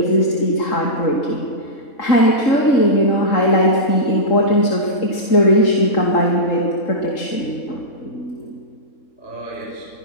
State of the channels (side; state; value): right; late; 3.6 ms